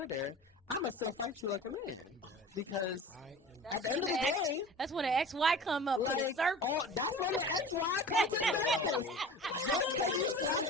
I'm going to still fight you like a man. Okay. Because at the end of the day, that's when the XY come up. Like, that's when the XY come to surface. Just because you slap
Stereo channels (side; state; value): both; normal; correlation 0.39